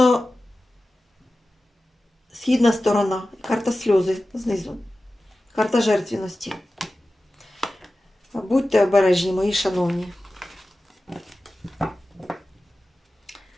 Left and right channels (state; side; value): normal; both; correlation 0.95